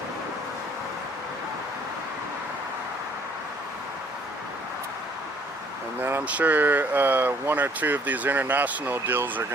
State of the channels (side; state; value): both; normal; correlation 0.60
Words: And then I'm sure 1 or 2 of these international deals are